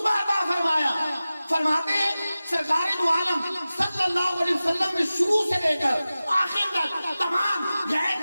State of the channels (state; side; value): inverted; both; correlation -0.96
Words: ادا فرمایا. فرماتے ہیں سرکار دو عالم صلی اللہ علیہ وسلم نے شروع سے لے کر آخر تک تمام